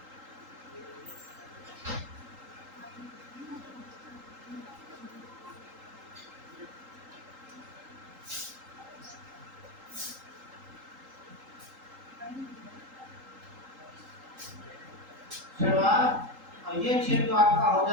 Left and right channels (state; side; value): late; left; 3.8 ms